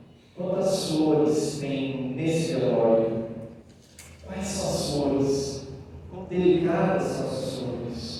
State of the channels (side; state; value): both; identical; correlation 1.00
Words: quantas flores tem nesse velório. Quais são as flores? Quão delicadas são as